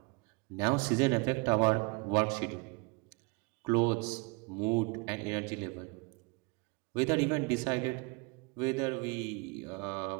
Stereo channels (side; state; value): left; quieter; 30.1 dB